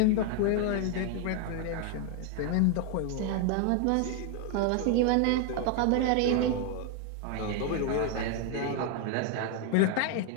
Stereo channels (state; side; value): different; both; correlation 0.00